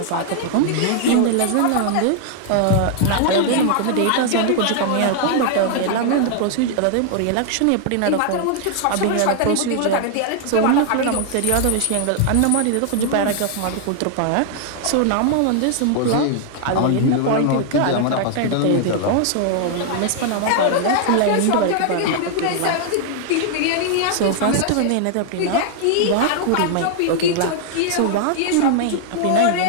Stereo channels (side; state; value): both; different; correlation 0.00